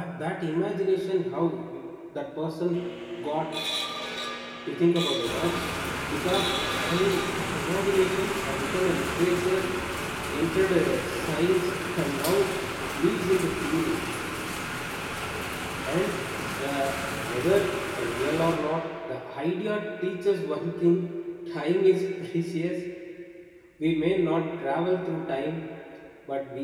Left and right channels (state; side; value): identical; both; correlation 1.00